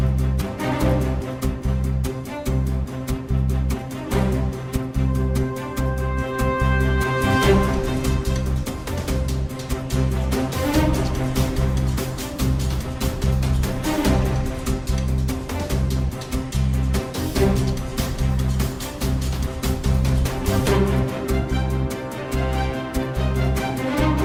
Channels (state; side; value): identical; both; correlation 1.00